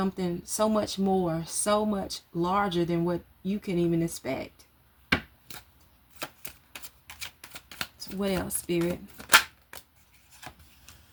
so much more, so much larger than what you can even expect. So what else, spirit?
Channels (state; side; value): identical; both; correlation 1.00